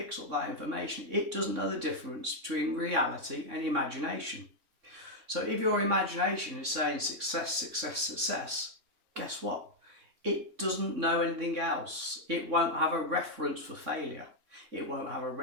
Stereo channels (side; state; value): left; late; 3.6 ms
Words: up that information. It doesn't know the difference between reality and imagination. So if your imagination is saying success, success, success, guess what? It doesn't know anything else. It won't have a reference for failure. It won't have a